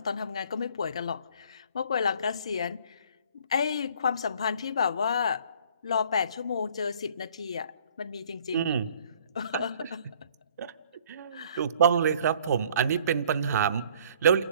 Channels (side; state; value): both; inverted; correlation -0.56